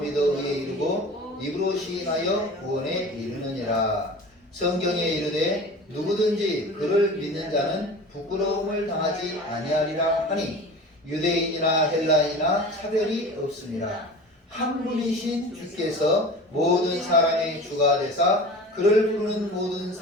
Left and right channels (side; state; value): both; normal; correlation 0.37